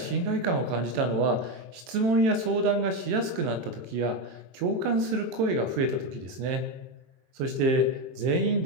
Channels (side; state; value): left; late; 23 ms